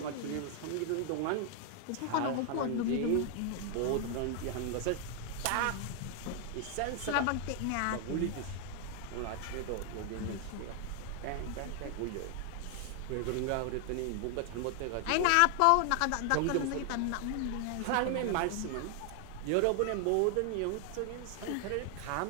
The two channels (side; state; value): both; different; correlation 0.00